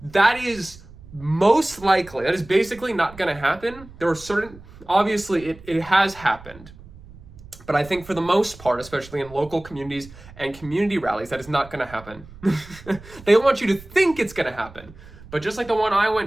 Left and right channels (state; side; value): noise; right; rumble, 19 dB below the sound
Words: that is most likely, that is basically not gonna happen. There are certain, obviously it has happened. But I think for the most part, especially in local communities and community rallies, that is not going to happen. They want you to think it's going to happen. But just like the one I